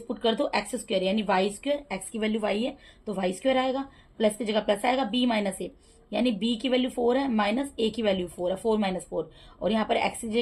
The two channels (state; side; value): identical; both; correlation 1.00